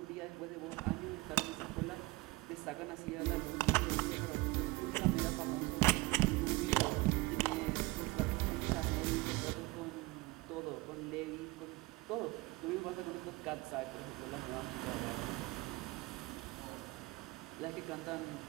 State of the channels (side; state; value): left; quieter; 22.0 dB